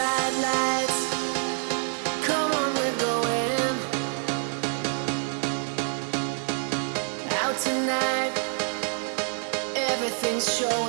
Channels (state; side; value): silent; left; 58 dB below the other